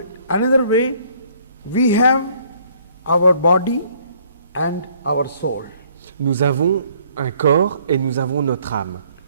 another way, we have our body and our soul. Nous avons un corps et nous avons notre âme.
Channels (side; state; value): both; inverted; correlation -0.61